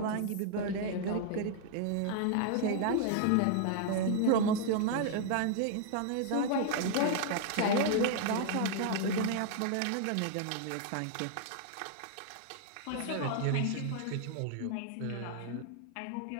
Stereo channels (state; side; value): different; both; correlation 0.00